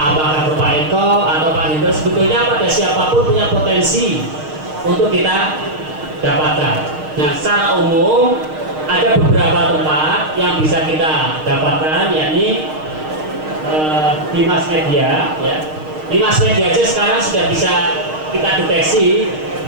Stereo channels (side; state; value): left; late; 6.5 ms